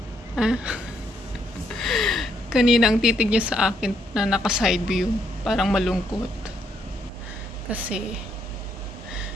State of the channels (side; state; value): both; normal; correlation 0.74